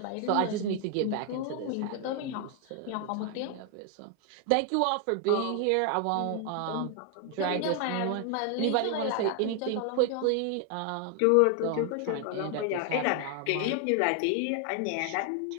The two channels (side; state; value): both; different; correlation 0.00